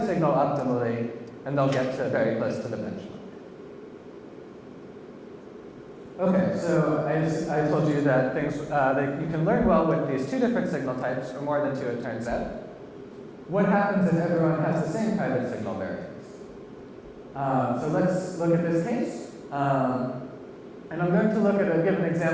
signal optimally, and they'll get to very close to the benchmark. Okay, so I told you that you can learn well with these two different signal types, or more than two, it turns out. What happens if everyone has the same private signal variance? So let's look at this case. And I'm going to give an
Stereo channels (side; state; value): both; identical; correlation 1.00